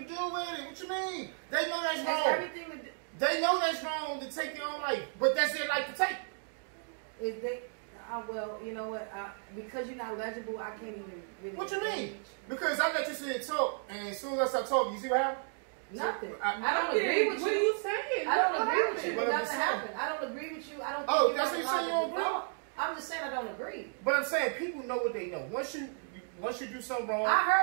do with it. What you mean? They know that's wrong. Everything to do. They know that's wrong to take their own life, but that's their life to take. If they, well, you know what? Because you're not legible, I can't even really. What you mean? Because I let you sit and talk, and as soon as I start talking, you see what happened? Nothing. I don't agree with you. What are you saying? I don't agree with you. Nothing happened. I don't agree with you. I don't. Oh, that's what you say. You don't agree. I'm just saying I don't agree. But I'm saying people know what they know. Once you do something wrong. I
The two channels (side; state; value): left; silent; 55 dB below the other